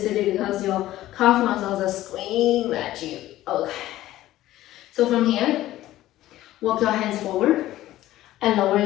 because your calf muscles are screaming at you. Okay. So from here, walk your hands forward and lower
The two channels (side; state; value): right; quieter; 14.9 dB